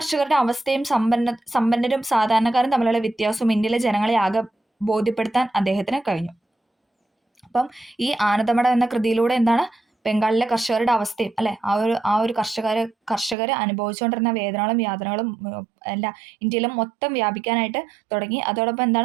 അവസ്ഥയും സമ്പന്നരും സാധാരണക്കാരും തമ്മിലുള്ള വ്യത്യാസവും ഇന്ത്യയിലെ ജനങ്ങളെ ആകെ ബോധ്യപ്പെടുത്താൻ അദ്ദേഹത്തിന് കഴിഞ്ഞു. അപ്പം ഈ ആനന്ദമഠം എന്ന കൃതിയിലൂടെ ബംഗാളിലെ കർഷകരുടെ അവസ്ഥയും അല്ലെ ആ ഒരു കർഷകർ അനുഭവിച്ചുകൊണ്ടിരുന്ന വേദനകളും യാതനകളും ഇന്ത്യയിലും മൊത്തം വ്യാപിക്കാനായിട്ട് തുടങ്ങി. അതോടൊപ്പം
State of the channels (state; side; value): drops out; left; at 13.4 s